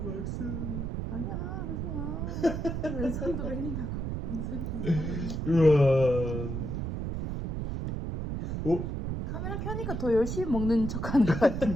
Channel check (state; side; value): noise; right; rumble, 3 dB below the sound